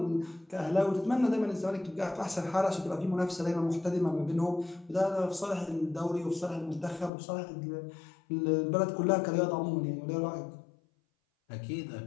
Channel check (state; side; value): drops out; right; at 7.1 s